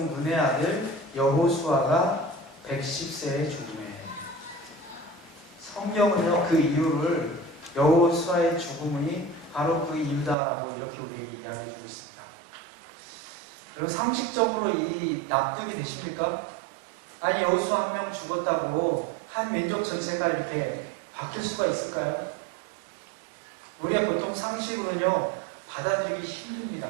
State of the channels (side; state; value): left; drops out; at 10.4 s